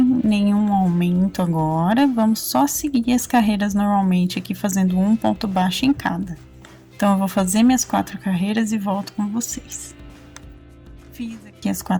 nenhum aumento agora, vamos só seguir as carreiras normalmente aqui, fazendo um ponto baixo em cada. Então, eu vou fazer minhas 4 carreiras e volto com vocês. Fiz aqui as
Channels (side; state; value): both; identical; correlation 1.00